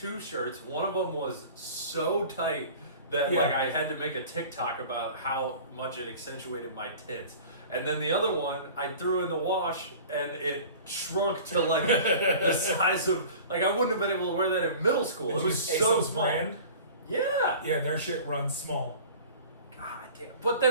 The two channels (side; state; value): both; inverted; correlation -0.42